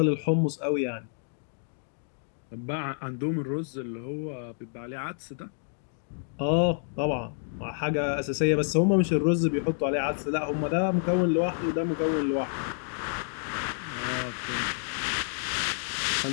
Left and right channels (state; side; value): silent; right; digital silence